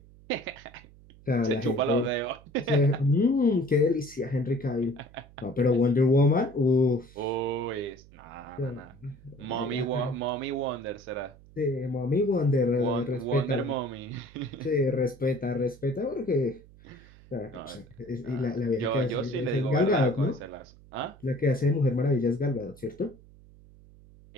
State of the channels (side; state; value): right; noise; hum, 23 dB below the sound